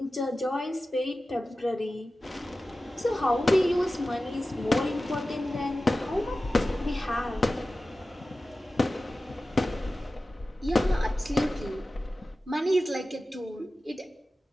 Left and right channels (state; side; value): normal; both; correlation 0.95